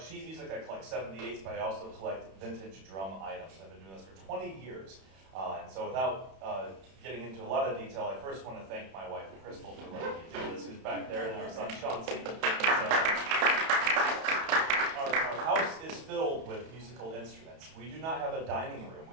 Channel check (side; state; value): left; late; 31 ms